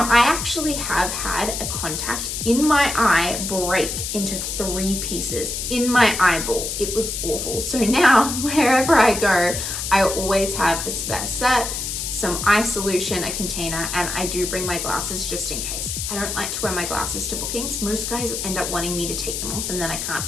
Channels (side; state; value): left; noise; hiss, 4 dB below the sound